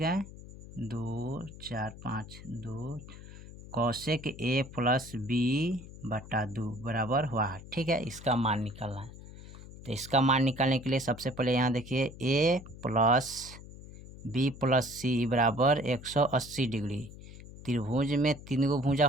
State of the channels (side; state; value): left; noise; hum, 16 dB below the sound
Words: है, 2 4 5 2 कौशिक a+b/2 बराबर हुआ, ठीक है। इसका मान निकालना है। तो इसका मान निकालने के लिए सबसे पहले यहाँ देखिए a+b+c बराबर 180 डिग्री। त्रिभुज में 3 गो भुजा